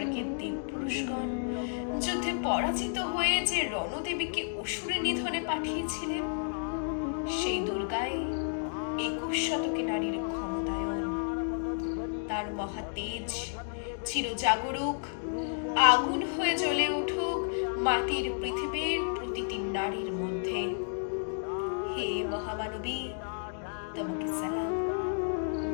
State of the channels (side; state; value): right; silent; digital silence